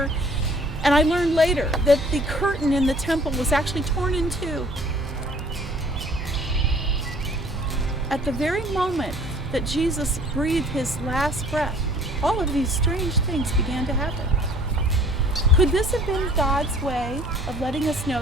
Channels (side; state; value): right; noise; hum, 10 dB below the sound